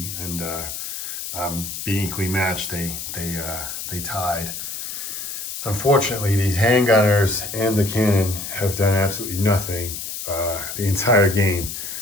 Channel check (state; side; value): noise; left; hiss, 7 dB below the sound